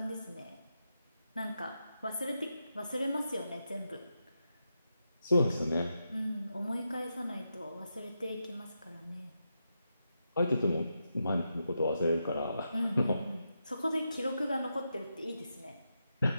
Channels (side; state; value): both; inverted; correlation -0.86